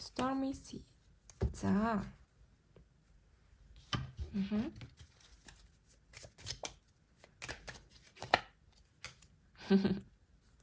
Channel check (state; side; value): identical; both; correlation 1.00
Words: Stormy Sea. За.